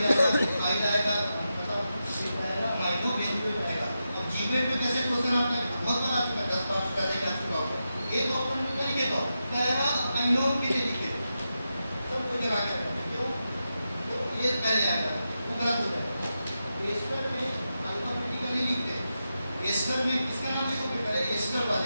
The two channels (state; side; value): inverted; both; correlation -0.89